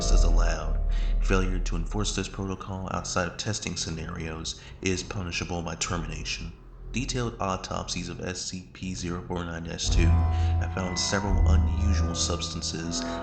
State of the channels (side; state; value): both; identical; correlation 1.00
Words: is allowed. Failure to enforce this protocol outside of testing scenarios is punishable by termination. Detailed autopsies of SCP-049-2 have found several unusual substances